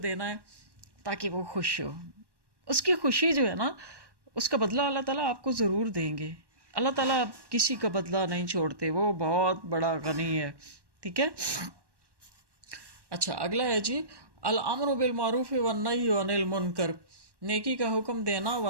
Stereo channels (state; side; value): late; left; 1.1 ms